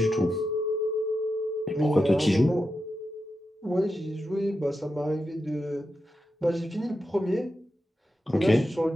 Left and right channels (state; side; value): normal; both; correlation 0.89